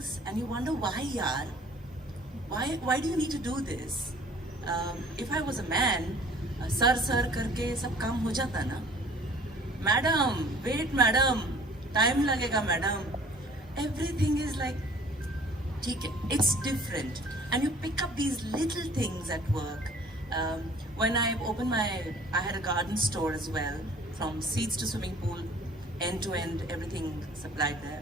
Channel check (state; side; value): normal; both; correlation 0.51